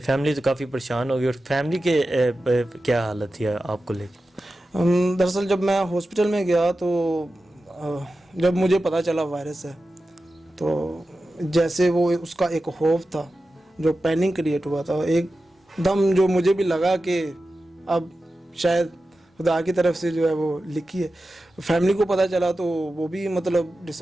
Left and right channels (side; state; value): both; normal; correlation 0.93